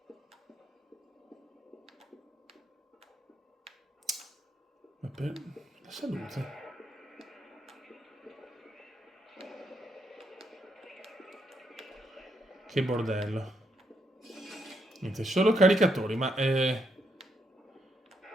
Ma per la salute. Che bordello. Niente, solo caricatori, ma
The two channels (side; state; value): both; normal; correlation 0.77